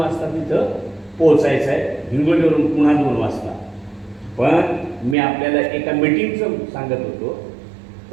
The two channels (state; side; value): drops out; left; at 5.2 s